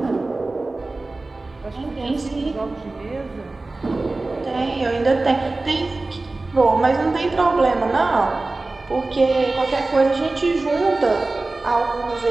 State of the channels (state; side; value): quieter; left; 3.2 dB